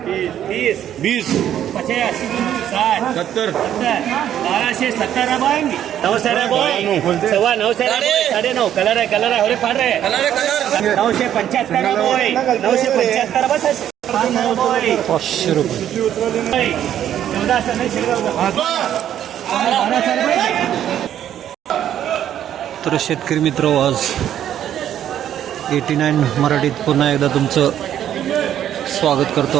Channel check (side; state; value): left; quieter; 10.6 dB